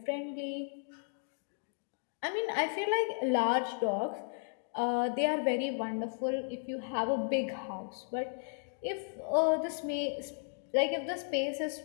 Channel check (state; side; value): silent; right; digital silence